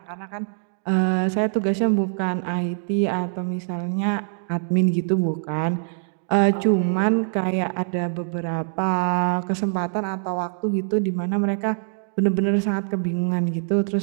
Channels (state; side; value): silent; left; digital silence